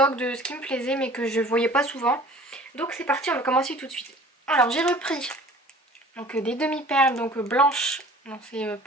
de ce qui me plaisait mais que je voyais pas souvent. Donc c'est parti, on va commencer tout de suite. Alors j'ai repris donc des demi-perles donc blanches, non c'est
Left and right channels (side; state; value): both; normal; correlation 0.48